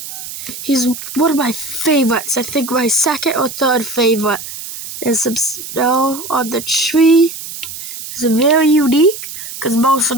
He's one of my favorites. I think my second or third favorite. There's some snow on the tree. It's very unique because most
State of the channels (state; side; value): noise; right; hiss, 10 dB below the sound